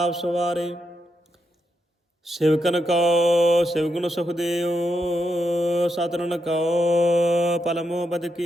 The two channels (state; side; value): normal; both; correlation 0.82